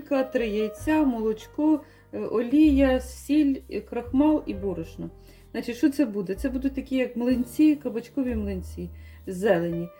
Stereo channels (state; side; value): identical; both; correlation 1.00